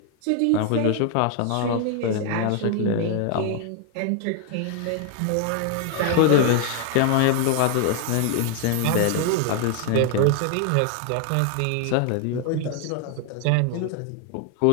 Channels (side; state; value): both; different; correlation 0.00